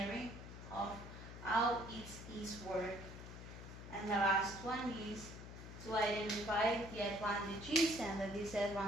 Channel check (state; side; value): noise; left; hum, 12 dB below the sound